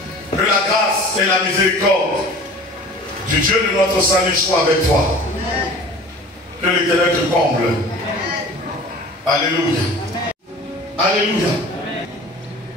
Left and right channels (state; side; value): normal; both; correlation 0.42